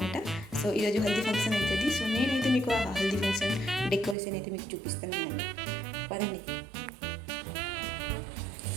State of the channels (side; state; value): left; drops out; at 4.2 s